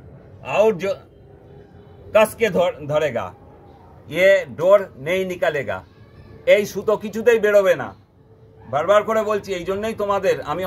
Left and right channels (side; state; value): both; identical; correlation 1.00